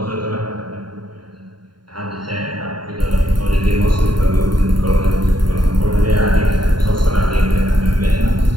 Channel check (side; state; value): left; late; 0.72 ms